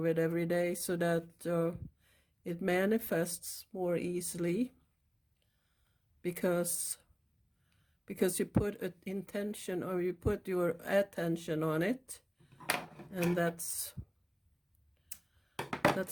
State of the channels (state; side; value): identical; both; correlation 1.00